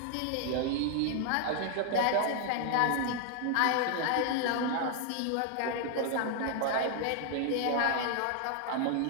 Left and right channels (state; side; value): different; both; correlation 0.00